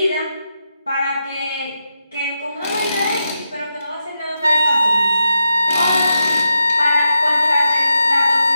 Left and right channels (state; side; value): inverted; both; correlation -0.86